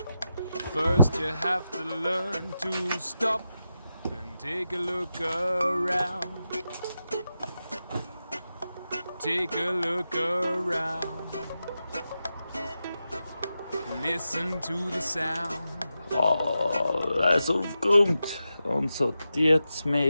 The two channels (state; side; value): inverted; both; correlation -0.89